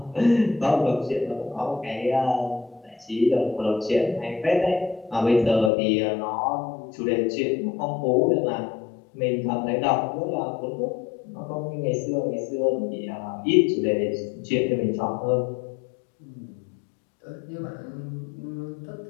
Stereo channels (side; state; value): right; drops out; at 5.7 s